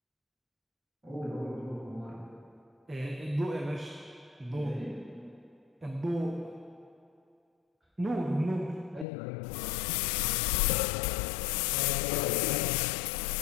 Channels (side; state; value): right; drops out; at 9.1 s